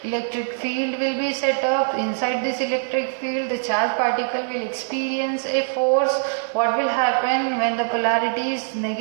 electric field will be set up. Inside this electric field, the charged particle will experience a force. What will happen when the polarity is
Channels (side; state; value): left; silent; digital silence